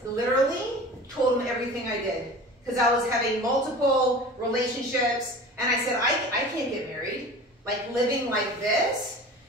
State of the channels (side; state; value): both; normal; correlation 0.38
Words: literally told him everything I did because I was having multiple relationships, and I said I can't get married, like living like this.